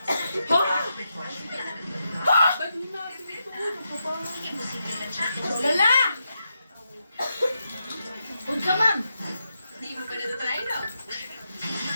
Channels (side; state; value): both; inverted; correlation -0.85